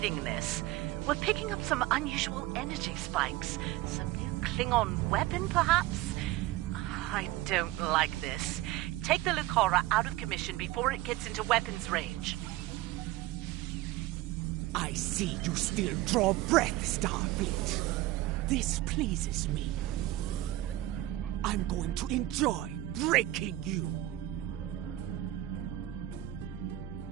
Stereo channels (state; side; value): quieter; left; 16.1 dB